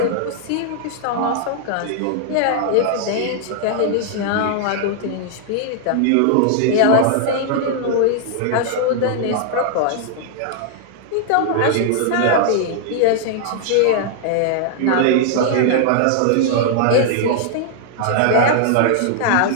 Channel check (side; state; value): both; different; correlation -0.01